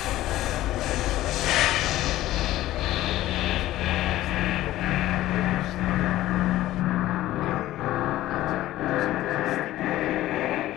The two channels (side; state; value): right; quieter; 15.2 dB